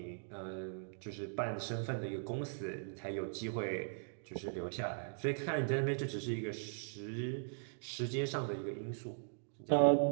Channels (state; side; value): silent; left; digital silence